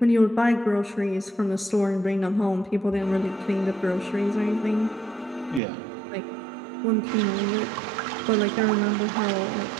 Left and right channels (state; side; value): drops out; left; at 5.6 s